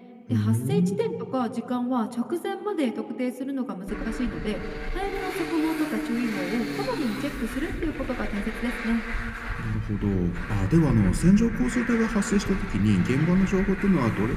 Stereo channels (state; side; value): identical; both; correlation 1.00